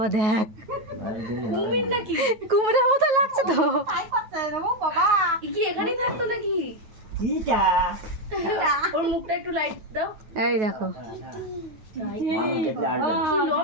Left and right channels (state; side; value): late; left; 9.3 ms